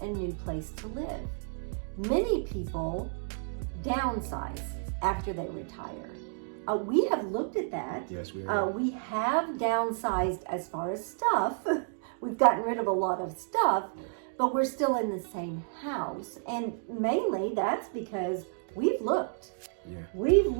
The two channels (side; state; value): left; silent; digital silence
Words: new place to live? Many people downsize after they retire. We have looked at that. Yes, we are. We have downsized as far as stuff. We've gotten rid of a lot of stuff, but we're still in the same house. And mainly that's because we've looked. Yeah. We've